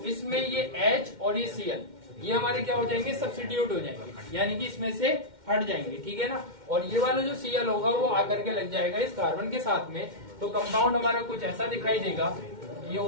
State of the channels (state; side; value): late; left; 2.1 ms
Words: इसमें ये H और ये Cl, ये हमारे क्या हो जाएंगे? सब्स्टिट्यूट हो जाएंगे, यानी कि इसमें से हट जाएंगे। ठीक है ना, और ये वाला जो Cl होगा वो आकर के लग जाएगा इस कार्बन के साथ में, तो कंपाउंड हमारा कुछ ऐसा दिखाई देगा। ये